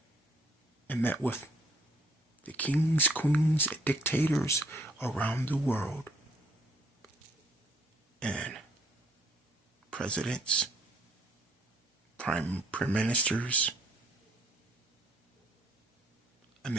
and met with the kings, queens, and dictators around the world, and presidents, prime ministers. I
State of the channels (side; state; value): both; normal; correlation 0.65